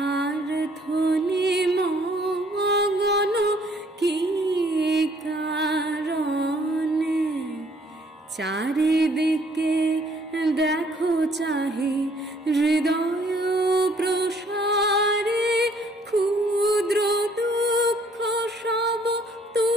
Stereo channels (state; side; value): normal; both; correlation 0.62